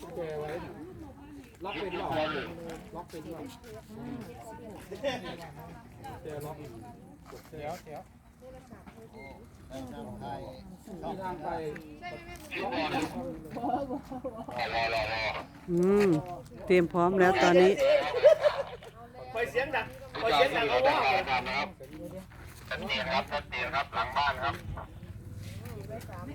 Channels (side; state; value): both; identical; correlation 1.00